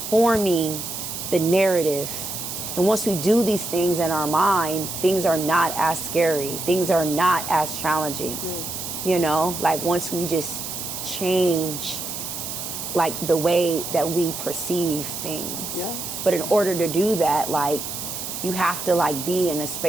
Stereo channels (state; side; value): noise; right; hiss, 6 dB below the sound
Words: the narrative. And once we do these things in our mind, things are not as scary. Things are not as challenging. You know, like, once we just change, like, the way that we perceive things. Yeah. But in order to do that, like, you have to, like, be in a